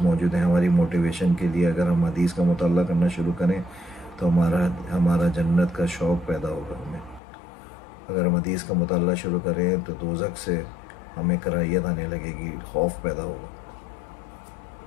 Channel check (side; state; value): right; drops out; at 7.2 s